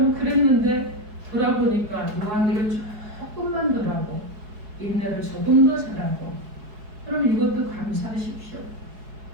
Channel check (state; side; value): late; left; 4.7 ms